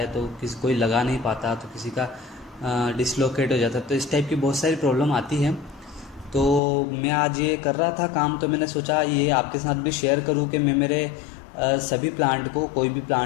तो किसी कोई लगा नहीं पाता, तो किसी का डिसलोकेट हो जाता है। तो इस टाइप की बहुत सारी प्रॉब्लम आती है। तो मैं आज ये कर रहा था काम, तो मैंने सोचा ये आपके साथ भी शेयर करूं कि मैं मेरे सभी प्लांट को, कोई भी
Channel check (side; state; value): right; drops out; at 6.6 s